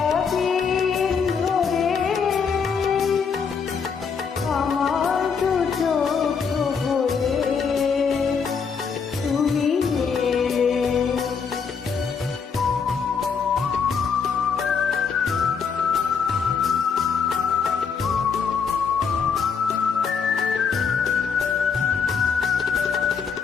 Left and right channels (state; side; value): quieter; right; 6.0 dB